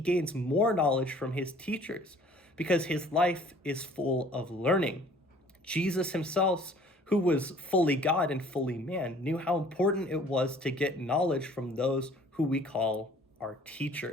more knowledge from his teachers because his life is full of learning. Jesus himself, who was fully God and fully man, knew how important it was to get knowledge from those who we call our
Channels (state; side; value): normal; both; correlation 0.53